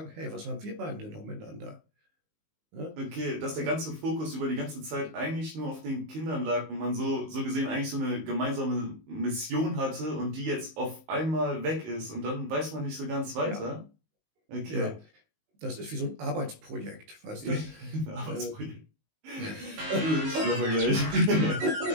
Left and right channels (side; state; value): left; late; 19 ms